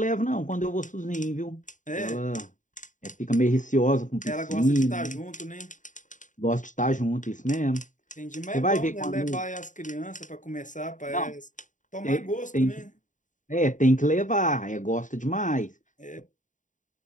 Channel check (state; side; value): late; right; 0.37 ms